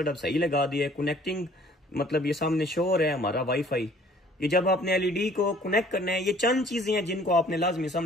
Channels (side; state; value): both; normal; correlation 0.55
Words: अब सही लगा दिया है। कनेक्टिंग मतलब ये सामने शो हो रहा है हमारा वाईफाई। ये जब आपने एलईडी को कनेक्ट करना है, ये चंद चीजें हैं जिनको आपने लाजमी